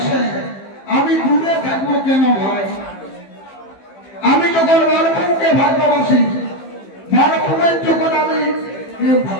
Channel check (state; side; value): late; right; 15 ms